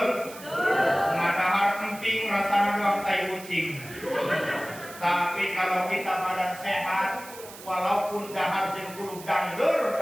Ngadahar emping rasanya doang tai kucing. Tapi kalau kita badan sehat, walaupun dahar jeung kudu dangdur,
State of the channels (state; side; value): noise; right; hiss, 16 dB below the sound